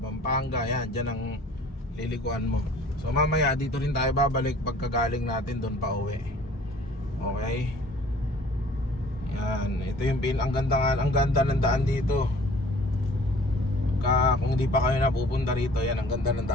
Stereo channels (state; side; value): normal; both; correlation 0.51